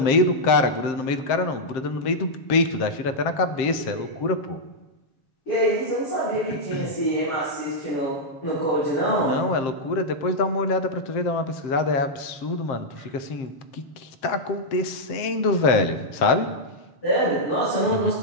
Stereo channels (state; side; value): late; right; 7.6 ms